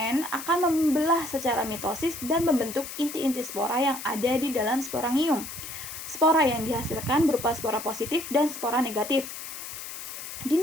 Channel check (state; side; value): noise; left; hiss, 10 dB below the sound